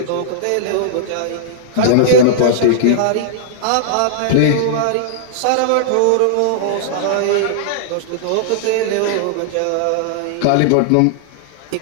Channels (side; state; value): both; different; correlation -0.01